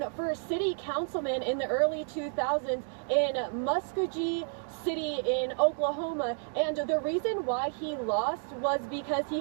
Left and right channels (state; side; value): silent; left; 55 dB below the other